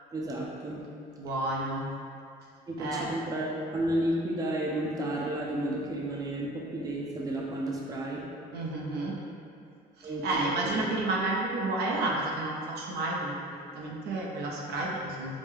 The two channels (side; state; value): both; normal; correlation 0.43